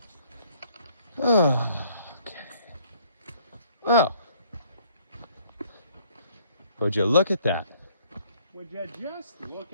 Oh. Oh. Would you look at that? Would you just look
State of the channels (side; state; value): both; inverted; correlation -0.61